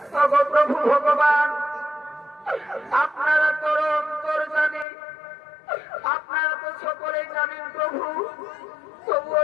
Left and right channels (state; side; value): drops out; right; at 4.9 s